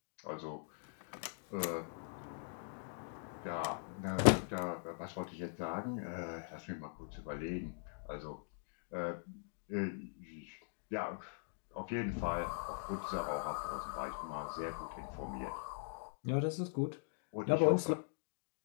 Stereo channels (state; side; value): silent; right; digital silence